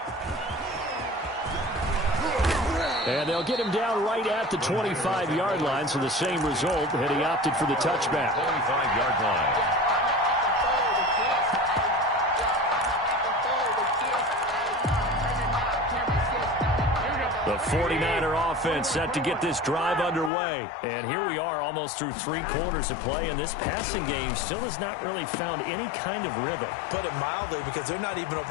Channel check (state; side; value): drops out; right; at 20.3 s